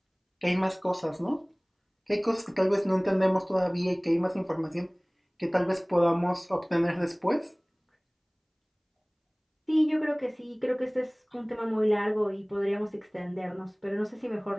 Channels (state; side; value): identical; both; correlation 1.00